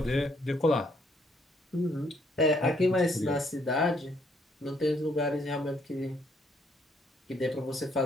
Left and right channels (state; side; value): normal; both; correlation 0.69